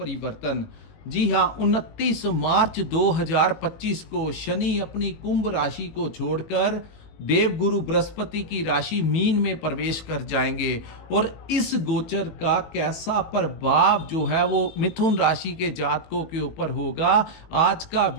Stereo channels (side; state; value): right; late; 18 ms